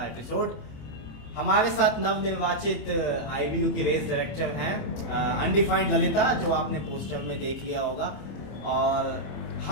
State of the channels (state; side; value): late; right; 26 ms